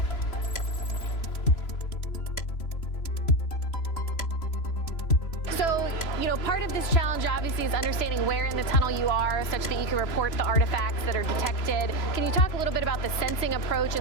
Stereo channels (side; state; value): right; late; 3.0 ms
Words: Part of this challenge obviously is understanding where in the tunnel you are such that you can report the artifacts that are detected. Can you talk a little bit about the sensing approach